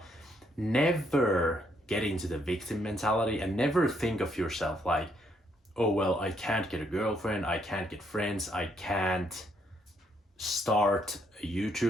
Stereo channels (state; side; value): normal; both; correlation 0.72